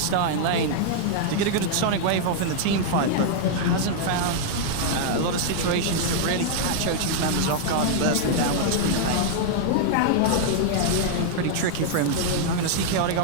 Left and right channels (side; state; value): both; different; correlation -0.01